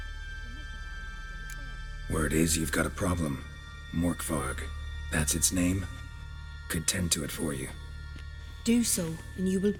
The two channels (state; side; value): identical; both; correlation 1.00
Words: Word is you've got a problem. Morkvarg. That's its name? Could tend to it for you. Do so, and you will